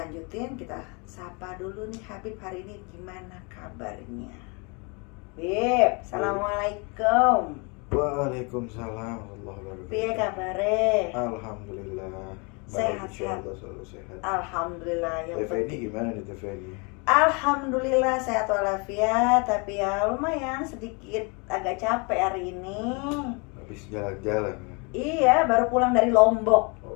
kita sapa dulu nih Habib, hari ini gimana kabarnya? Habib, assalamualaikum. Waalaikumsalam warahmatullahi wabarakatuh. Piye kabare? Alhamdulillah. Sehat, Baik, insyaallah selalu sehat. Alhamdulillah yang TV ini penting. gimana nih TV ini? Alhamdulillah sehat walafiat, tapi ya lumayan sedikit agak capek hari ini. Habis jalan-jalan. Iya, baru pulang dari Lombok.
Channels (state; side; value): quieter; right; 31.6 dB